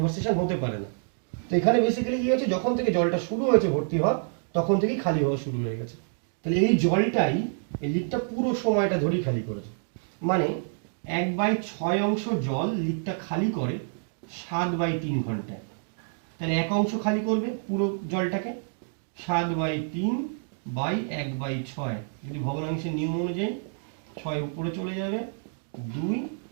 হতে পারে না। তো এখানে বেসিক্যালি কি হয়েছে, যখন থেকে জলটা শুরু হয়েছে ভর্তি হওয়া, তখন থেকেই খালি হওয়া শুরু হয়ে গেছে। তাহলে এই জলটাই এই লিকটা পুরো সময়টা ধরেই খালি করেছে। মানে 1/6 অংশ জল লিকটা খালি করে 7/3 ঘন্টায়। তাহলে 1 অংশ খালি করবে পুরো জলটাকে, 7/3/1/6। যদি ভগ্নাংশের নিয়ম অনুযায়ী 6 উপরে চলে যাবে, 2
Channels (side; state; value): left; silent; digital silence